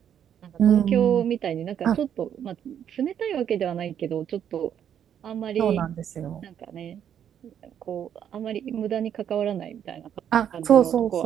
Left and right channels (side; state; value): left; quieter; 9.2 dB